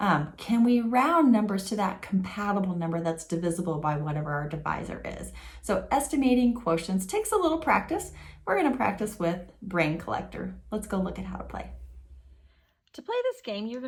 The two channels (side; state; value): both; identical; correlation 1.00